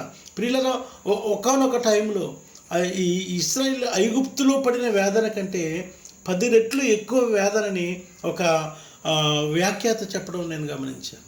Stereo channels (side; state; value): both; identical; correlation 1.00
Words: ప్రియులరా, ఒకానొక టైంలో ఈ ఇశ్రాయేలు ఐగుప్తులో పడిన వేదన కంటే 10 రెట్లు ఎక్కువ వేదనని ఒక వ్యాఖ్యాత చెప్పడం నేను గమనించాను.